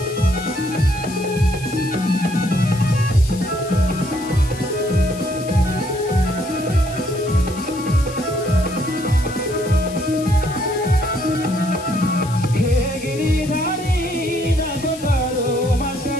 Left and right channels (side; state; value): left; noise; hiss, 16 dB below the sound